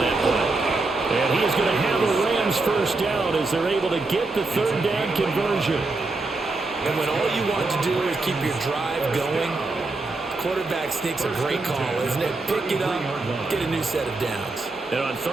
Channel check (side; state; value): left; quieter; 3.4 dB